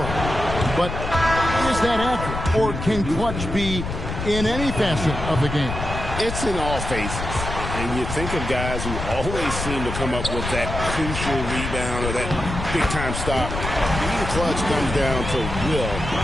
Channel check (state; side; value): noise; left; rumble, 5 dB below the sound